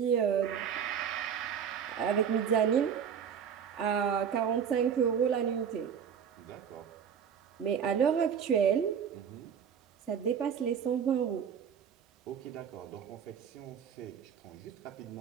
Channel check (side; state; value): left; quieter; 7.7 dB